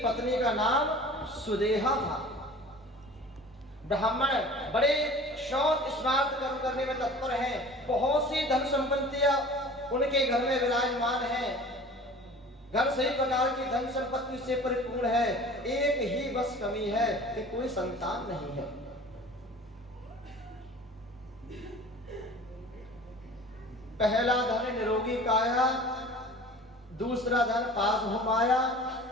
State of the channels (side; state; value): both; normal; correlation 0.43